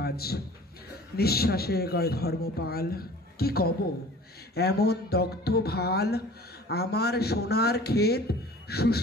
নিঃশ্বাসে কয় ধর্মপাল, কি কব এমন দগ্ধ ভাল। আমার সোনার ক্ষেত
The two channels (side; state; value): both; normal; correlation 0.45